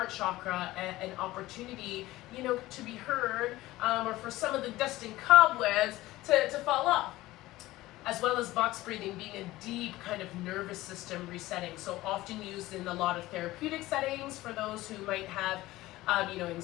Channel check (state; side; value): quieter; right; 17.5 dB